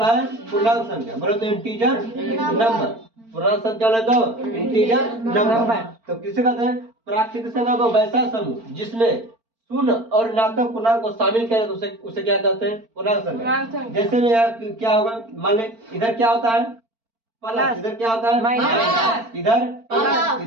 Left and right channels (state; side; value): late; left; 4.4 ms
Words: है पूर्णांक संख्या, बोलो तो इंटीजर नंबर, पूर्णांक संख्या बोले तो इंटीजर नंबर। तो किसे कहते हैं? प्राकृतिक संख्या को वैसा समूह जिसमें शून्य और ऋणात्मक पूर्णांक को शामिल किया तो उसे क्या कहते हैं? पूर्णांक संख्या। जैसे में यहाँ क्या होगा, मान ले इधर क्या होता है? प्लस, इधर क्या होता है? माइनस, इधर प्लस,